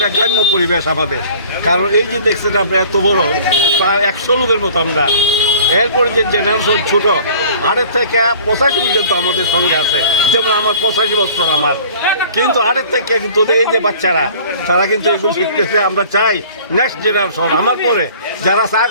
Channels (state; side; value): inverted; both; correlation -0.48